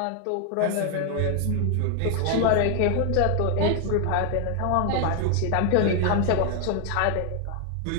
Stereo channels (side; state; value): both; different; correlation 0.00